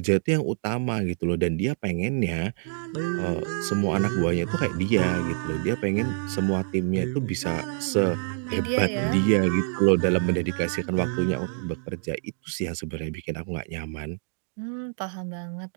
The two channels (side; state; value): left; silent; digital silence